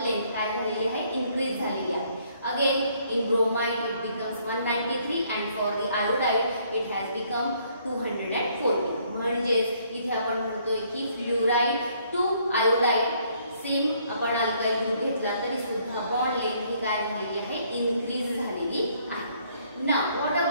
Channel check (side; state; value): both; inverted; correlation -0.66